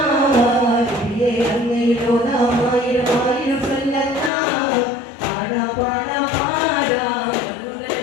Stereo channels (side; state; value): right; drops out; at 4.3 s